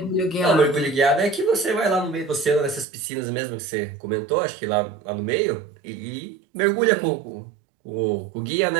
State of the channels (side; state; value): left; drops out; at 2.9 s